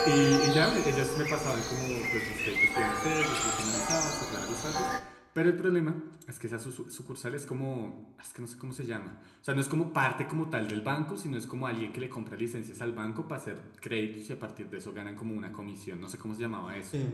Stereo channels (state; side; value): identical; both; correlation 1.00